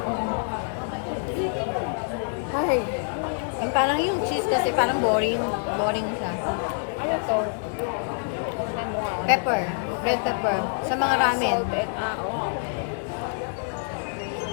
Ay. Ang parang yung cheese kasi parang boring. Boring siya. Pepper. Red pepper. Sa mga ramen.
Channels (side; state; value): right; silent; 61 dB below the other